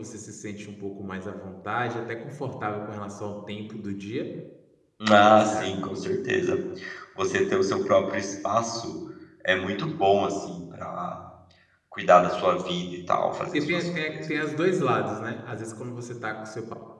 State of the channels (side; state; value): both; identical; correlation 1.00